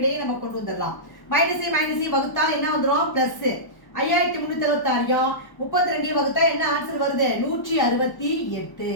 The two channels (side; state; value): right; late; 1.1 ms